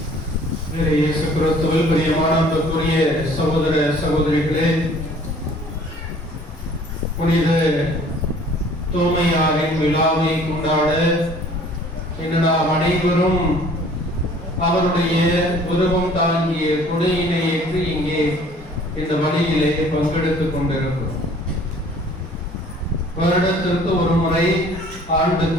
இயேசு கிறிஸ்துவில் பிரியமான அன்புக்குரிய சகோதர சகோதரிகளே, புனித தோமையாரின் விழாவை கொண்டாட இன்று நாம் அனைவரும் அவருடைய உருவம் தாங்கிய கொடையினை ஏற்று இங்கே இந்த வழியிலே பங்கெடுத்துக் கொண்டிருக்கிறோம். வருடத்திற்கு ஒரு முறை ஆண்டு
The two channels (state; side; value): normal; both; correlation 0.53